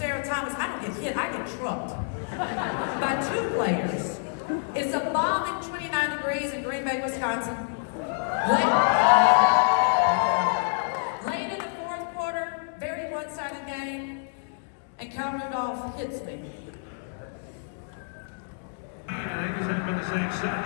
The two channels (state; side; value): silent; right; digital silence